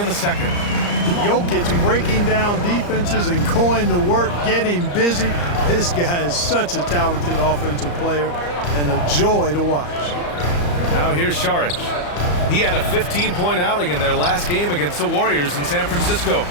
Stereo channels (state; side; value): late; right; 34 ms